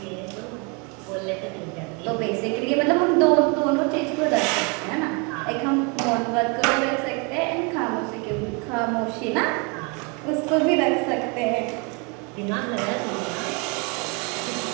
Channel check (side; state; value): left; quieter; 32.4 dB